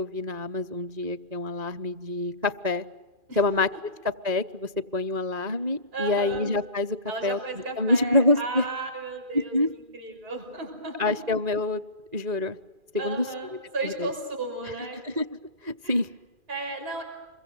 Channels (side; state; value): left; late; 2.4 ms